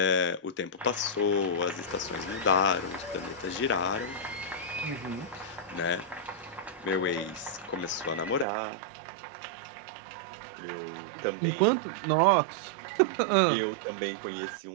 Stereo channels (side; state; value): left; drops out; at 8.5 s